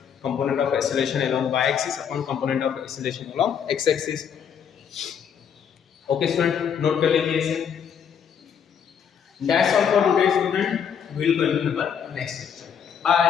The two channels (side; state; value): right; quieter; 7.8 dB